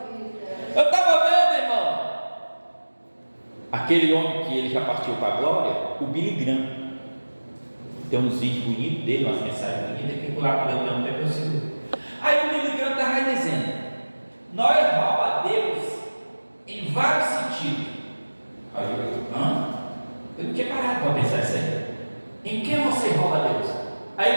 Eu estava vendo, irmão, aquele homem que ele já partiu para a glória, o Billy Graham. Tem uns vídeos bonitos dele, umas mensagens bonitas, que lá para eu não ter possível. Aí o Billy Graham estava dizendo: nós roubamos a Deus em vários sentidos. Aí eu não tinha parado para pensar isso aí. Em que você rouba a Deus? Aí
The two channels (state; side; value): inverted; both; correlation -1.00